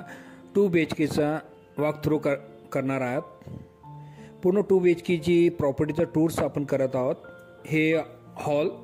2 BHKचा वॉक थ्रू करणार आहोत. पूर्ण 2 BHKची प्रॉपर्टीचा टूर्स आपण करत आहोत. हे हॉल,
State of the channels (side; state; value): both; identical; correlation 1.00